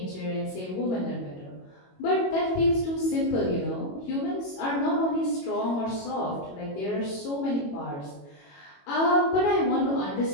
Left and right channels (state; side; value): late; right; 21 ms